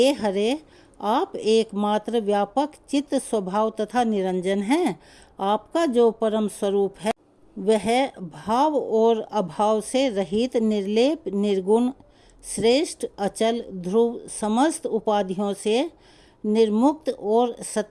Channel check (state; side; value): identical; both; correlation 1.00